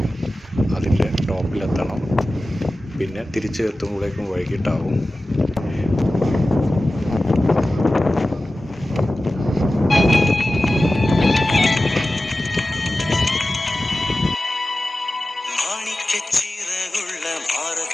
അതിൻ്റെ ടോപ്പിലെത്തണം. പിന്നെ തിരിച്ച് എത്തുമ്പോഴേക്കും വൈകിട്ടാവും. മാണിക്കച്ചിറകുള്ള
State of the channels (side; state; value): both; normal; correlation 0.95